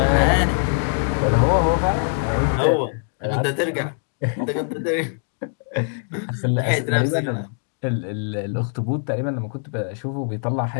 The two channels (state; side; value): silent; right; digital silence